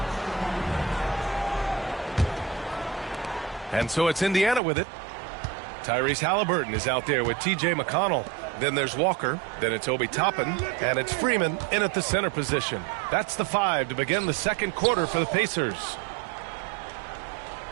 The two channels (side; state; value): left; drops out; at 4.6 s